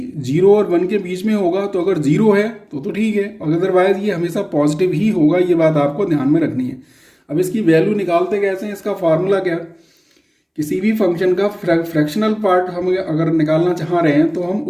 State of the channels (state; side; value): identical; both; correlation 1.00